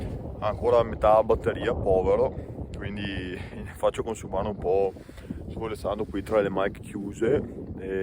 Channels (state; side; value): identical; both; correlation 1.00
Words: ha ancora metà batteria, povero, quindi faccio consumare un po' svolezzando qui tra le mic chiuse